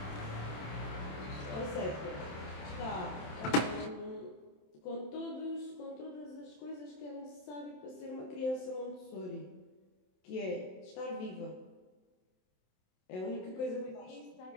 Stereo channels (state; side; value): late; right; 27 ms